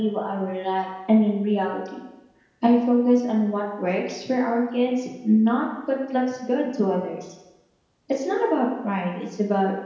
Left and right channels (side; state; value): both; identical; correlation 1.00